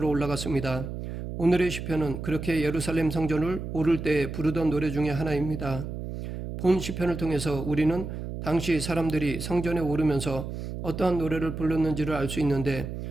올라갔습니다. 오늘의 시편은 그렇게 예루살렘 성전을 오를 때에 부르던 노래 중에 하나입니다. 본 시편을 통해서 우리는 당시 사람들이 성전에 오르면서 어떠한 노래를 불렀는지를 알 수 있는데,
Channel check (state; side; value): noise; right; hum, 7 dB below the sound